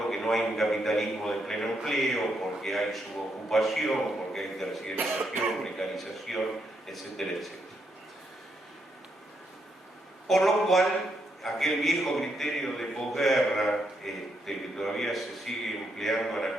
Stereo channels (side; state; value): both; normal; correlation 0.78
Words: que no hay un capitalismo de pleno empleo, porque hay subocupación, porque hay terciarización, precarización, etcétera, etcétera. Por lo cual, aquel viejo criterio de posguerra, que todavía se sigue empleando